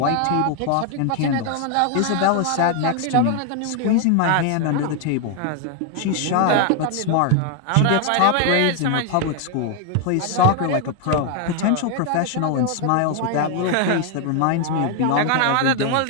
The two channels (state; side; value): different; both; correlation 0.01